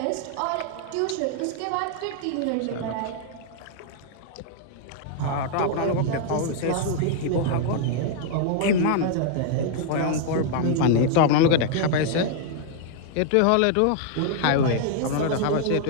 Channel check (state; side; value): different; both; correlation -0.01